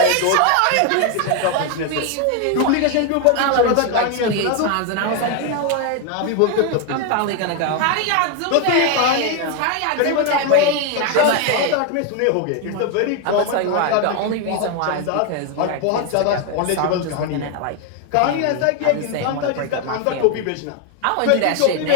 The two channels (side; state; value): both; different; correlation 0.01